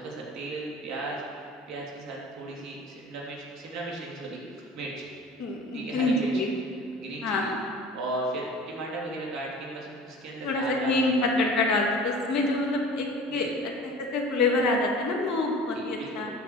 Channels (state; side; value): normal; both; correlation 0.41